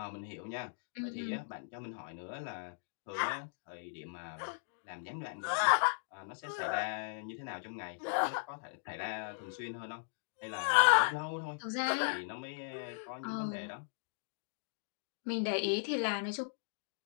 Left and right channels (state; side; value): silent; right; digital silence